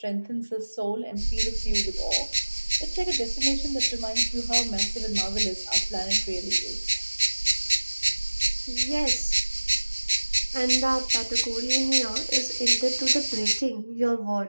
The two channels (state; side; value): inverted; both; correlation -1.00